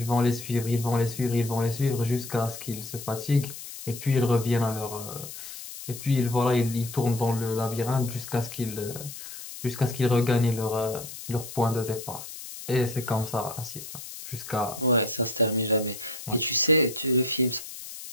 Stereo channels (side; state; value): left; noise; hiss, 11 dB below the sound